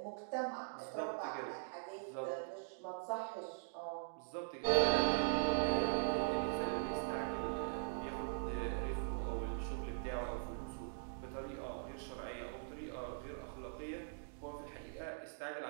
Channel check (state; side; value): silent; left; digital silence